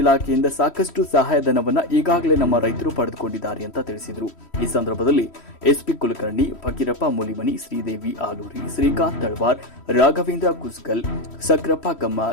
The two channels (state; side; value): late; right; 3.1 ms